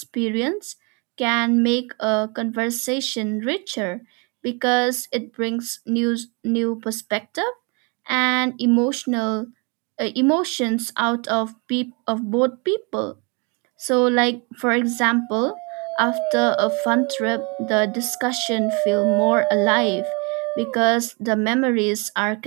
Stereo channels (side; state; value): left; quieter; 31.4 dB